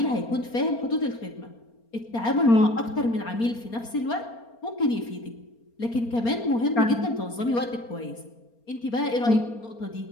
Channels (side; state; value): right; late; 4.3 ms